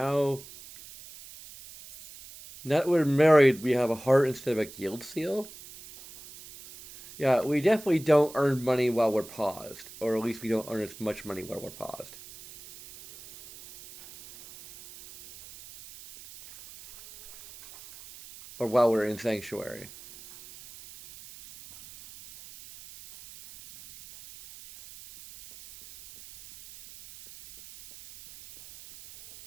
that we're married, we have a heart instead of a guild seal. Yeah, we definitely don't earn money while we're paused, or at least we don't earn as much money while we're paused, or while we're in sanctuary.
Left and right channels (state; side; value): noise; right; hiss, 18 dB below the sound